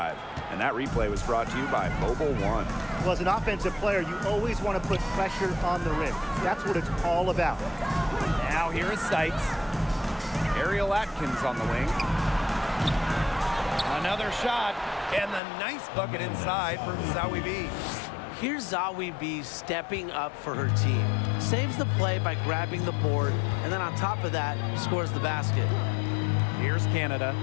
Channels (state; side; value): drops out; right; at 15.4 s